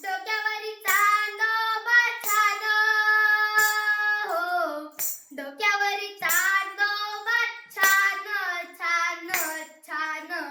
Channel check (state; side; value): identical; both; correlation 1.00